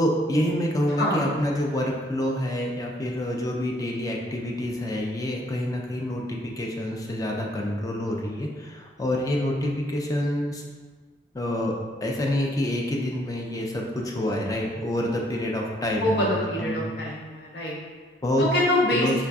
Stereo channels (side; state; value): both; normal; correlation 0.64